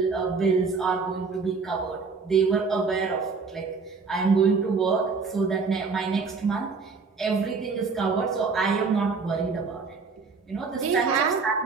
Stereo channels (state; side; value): quieter; left; 4.7 dB